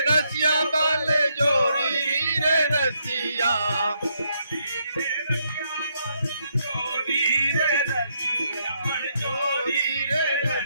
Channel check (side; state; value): both; inverted; correlation -0.76